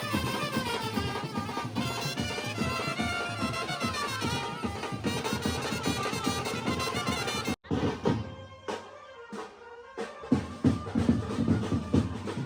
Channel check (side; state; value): both; identical; correlation 1.00